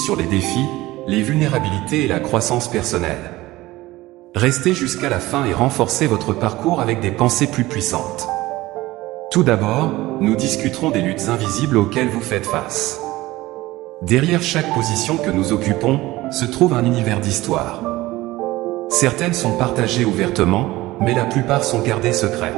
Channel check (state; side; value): quieter; left; 18.3 dB